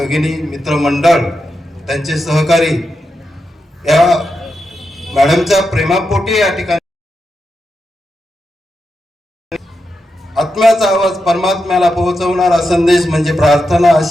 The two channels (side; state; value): both; normal; correlation 0.87